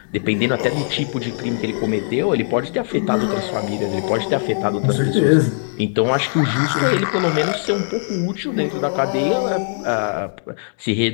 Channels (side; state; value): right; silent; digital silence